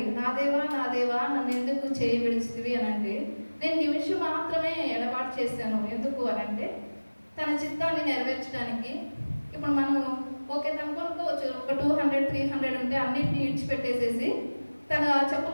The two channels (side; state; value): both; inverted; correlation -1.00